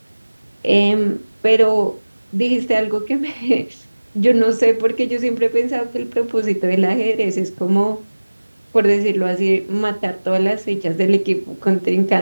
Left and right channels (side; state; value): both; inverted; correlation -1.00